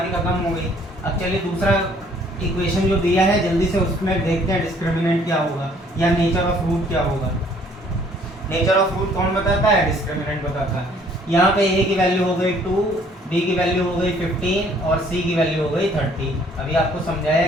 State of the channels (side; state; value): both; normal; correlation 0.60